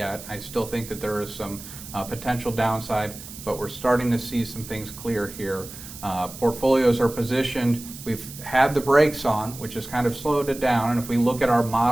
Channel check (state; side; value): noise; right; hiss, 14 dB below the sound